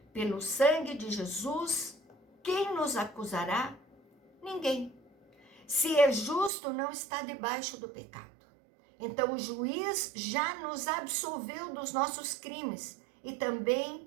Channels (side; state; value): left; drops out; at 6.5 s